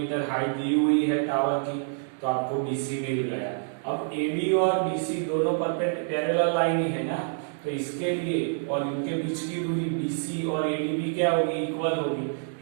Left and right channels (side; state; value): left; silent; digital silence